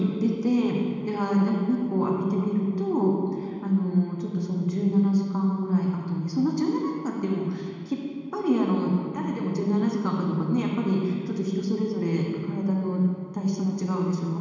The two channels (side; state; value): both; identical; correlation 1.00